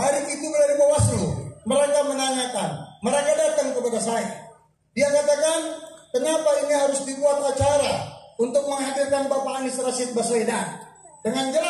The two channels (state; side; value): identical; both; correlation 1.00